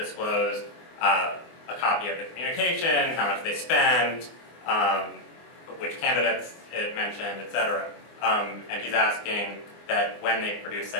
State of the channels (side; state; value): right; late; 24 ms